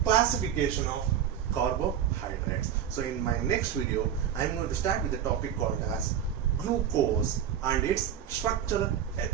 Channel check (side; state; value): left; quieter; 9.2 dB